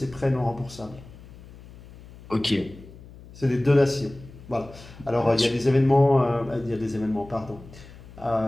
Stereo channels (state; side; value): noise; left; hum, 19 dB below the sound